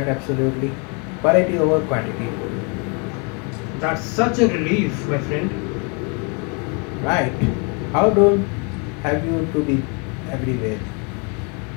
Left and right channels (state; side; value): quieter; right; 34.6 dB